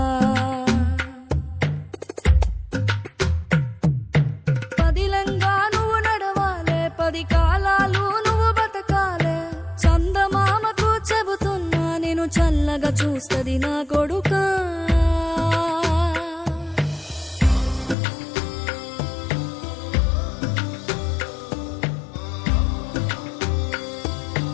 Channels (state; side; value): drops out; right; at 17.9 s